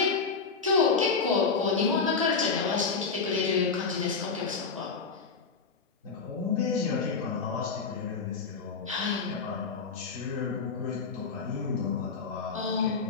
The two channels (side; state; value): right; quieter; 5.0 dB